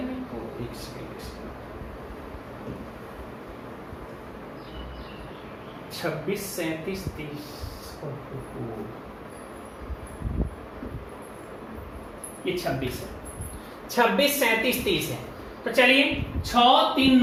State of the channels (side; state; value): both; identical; correlation 1.00